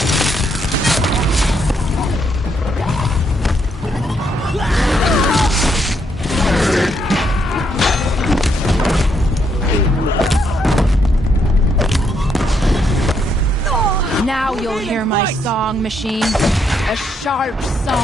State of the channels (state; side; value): normal; both; correlation 0.75